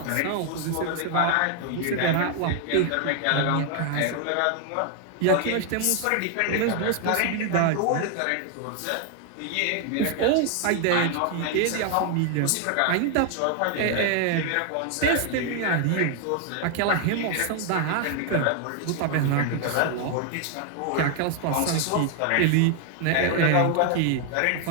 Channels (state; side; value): different; both; correlation 0.00